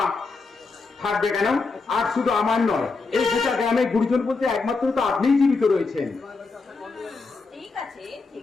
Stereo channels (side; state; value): right; quieter; 4.1 dB